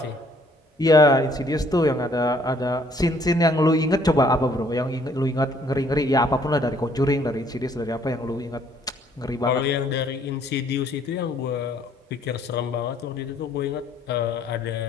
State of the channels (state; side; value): normal; both; correlation 0.63